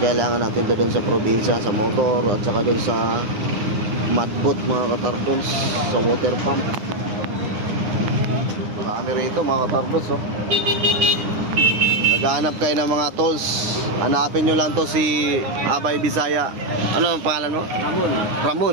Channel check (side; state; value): left; late; 9.8 ms